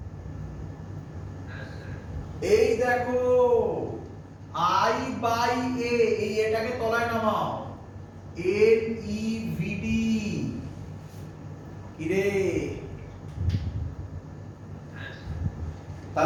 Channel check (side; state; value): both; identical; correlation 1.00